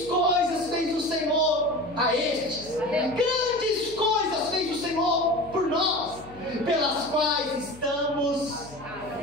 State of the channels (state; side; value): noise; left; hum, 20 dB below the sound